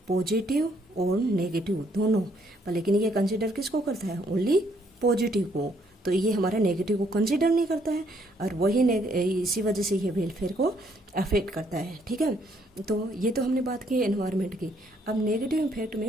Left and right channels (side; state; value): both; normal; correlation 0.69